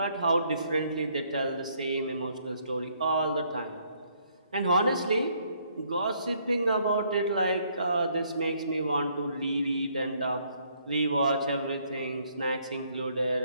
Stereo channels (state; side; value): inverted; both; correlation -0.68